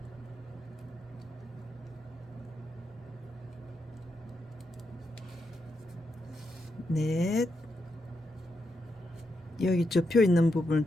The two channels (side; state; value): both; normal; correlation 0.84